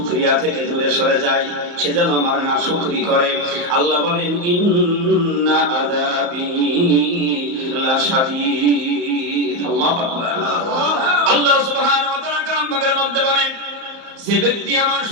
থেকে দূরে সরে যায়, সে যেন আমার না শুকরি করে। আল্লাহ বলেন, ইন্না আযাবি লাশাদীদ। আল্লাহু আকবার। আল্লাহ সুবহানাহু ওয়া তাআলা কালাম পাকের মধ্যে বলেন, যে ব্যক্তি আমার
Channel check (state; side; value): late; left; 34 ms